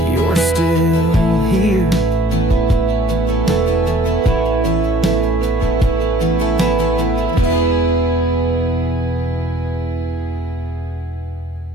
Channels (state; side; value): normal; both; correlation 0.53